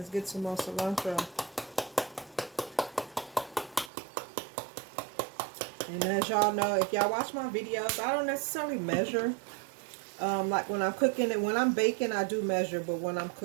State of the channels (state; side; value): drops out; left; at 3.9 s